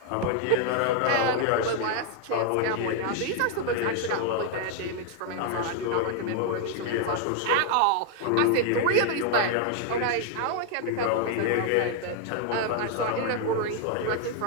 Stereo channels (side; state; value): both; different; correlation 0.00